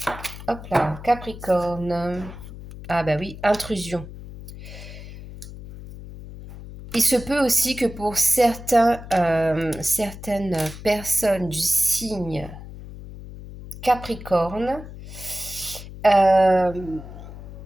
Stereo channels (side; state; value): left; noise; hum, 13 dB below the sound